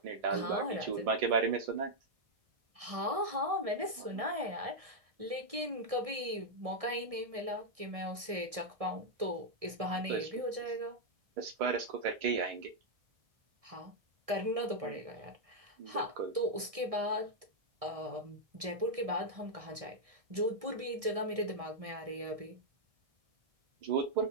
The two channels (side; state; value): left; late; 1.6 ms